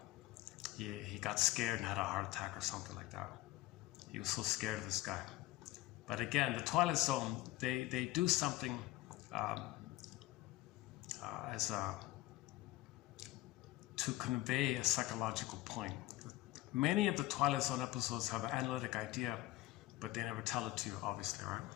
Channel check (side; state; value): right; quieter; 17.5 dB